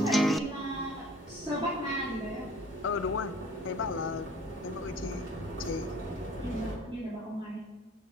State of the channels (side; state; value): both; normal; correlation 0.50